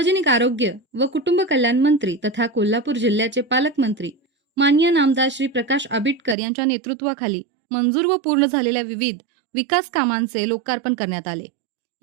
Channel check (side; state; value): left; drops out; at 6.4 s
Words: आरोग्य व कुटुंब कल्याण मंत्री तथा कोल्हापूर जिल्ह्याचे पालकमंत्री माननीय नामदार श्री प्रकाश आंबेडकर यांच्या नेतृत्वाखाली मंजूर व पूर्ण झालेल्या विविध विकास कामांचे लोकार्पण करण्यात आले.